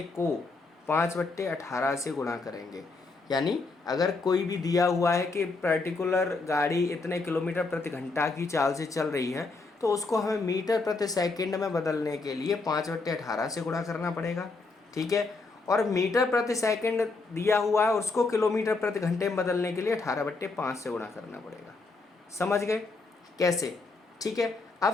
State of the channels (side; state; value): right; quieter; 3.7 dB